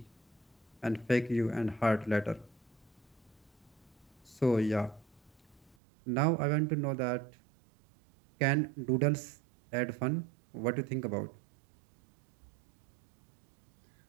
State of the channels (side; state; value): left; drops out; at 5.8 s